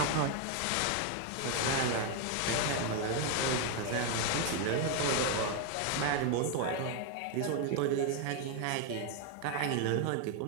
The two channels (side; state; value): both; different; correlation 0.01